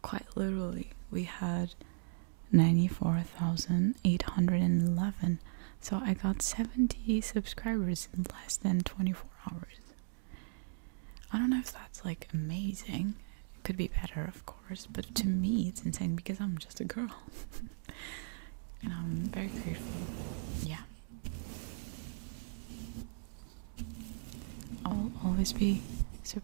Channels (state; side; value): silent; left; digital silence